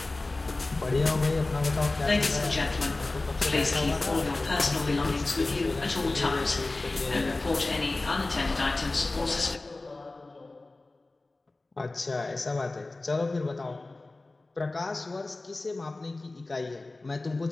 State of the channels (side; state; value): right; quieter; 3.1 dB